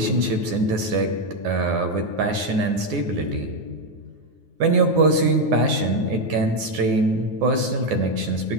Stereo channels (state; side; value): late; left; 9.5 ms